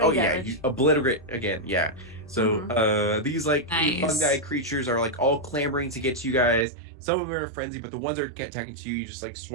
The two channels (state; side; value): drops out; left; at 6.7 s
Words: yeah, damage. you obliterate again. Yeah. So these like Nice. fungi creatures are like all clamoring to get to you guys. Some of them are frenzied, but the ones that are attacking to you just like